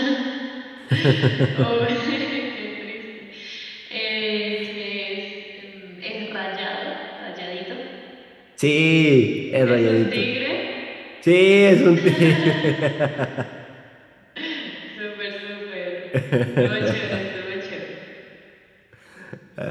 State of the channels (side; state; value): both; identical; correlation 1.00